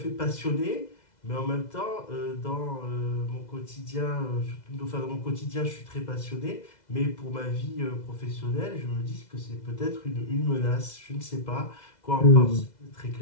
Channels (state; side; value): late; right; 2.0 ms